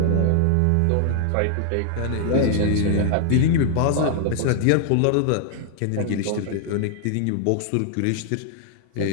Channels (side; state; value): both; different; correlation 0.00